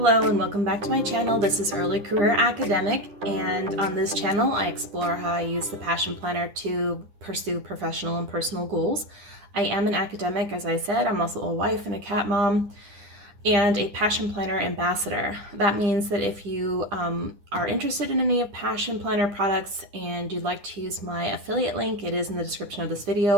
Hello and welcome back to my channel. This is Early Career Academic, and on this channel I explore how I use the Passion Planner to pursue professional and personal goals. I am an academic, as I said. I'm also a wife and a cat mom and a Passion Planner ambassador. That means that if you are interested in any of Passion Planner products and you'd like to use my affiliate link, it is in the description of this video.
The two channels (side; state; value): left; late; 9.9 ms